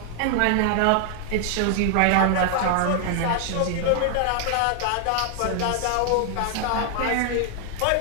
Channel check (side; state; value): both; different; correlation 0.00